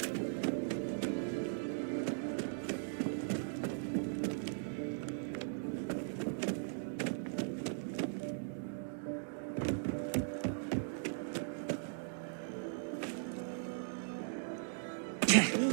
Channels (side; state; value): left; silent; digital silence